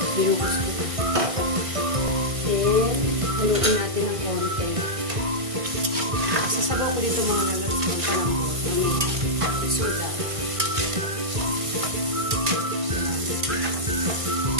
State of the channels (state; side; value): late; left; 1.5 ms